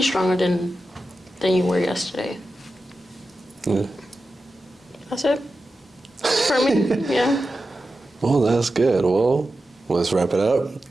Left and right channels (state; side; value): normal; both; correlation 0.92